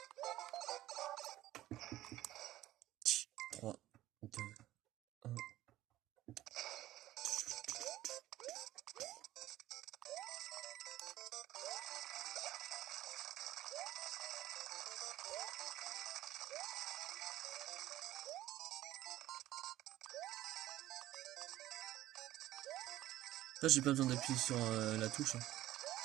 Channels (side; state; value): left; quieter; 14.7 dB